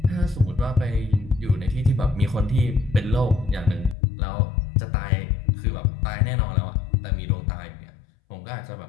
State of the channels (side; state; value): right; drops out; at 4.0 s